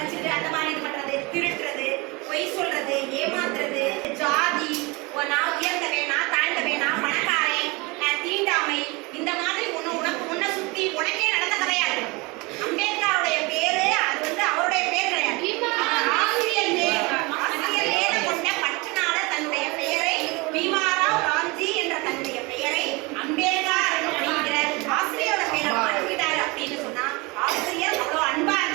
அந்த மாதிரி இது பண்றது, திருட்டுறது, பொய் சொல்றது, ஏமாத்துறது, ஜாதி, நான் உயர்ந்தவன், நான் தாழ்ந்தவன், நான் பணக்காரன், தீண்டாமை, இந்த மாதிரி உனக்கு முன்ன சுத்தி உனக்கே நடந்த கிடையாது. அம்பேத்கருடைய பேரு அது வந்து அவருடைய பேர் கிடையாது. ஆசிரியர் பேரை கொண்ட பற்றுனால தன்னுடைய பெயரை பீமாராவ் ராம்ஜி என்ற தன்னுடைய பெயரை அம்பேத்கர் அப்படிங்கிற ஆசிரியரோட பேரை மாற்றிட்டாரு அப்படின்னு சொன்னா ஆசிரியர் அவ்வளவு அன்பா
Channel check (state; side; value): quieter; left; 25.8 dB